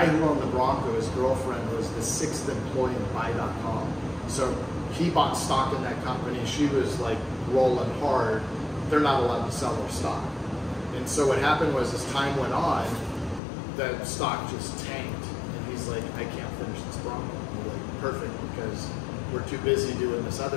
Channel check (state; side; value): drops out; right; at 13.4 s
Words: who owned the Bronco, his girlfriend, was the 6th employee in Buy.com. So he bought stock in that company. She was like rolling hard. They're not allowed to sell their stock. And so what happened was, as time went on, the stock just tanked. And he's like, I can't finish this Bronco. And we're like, perfect, because we're too busy doing this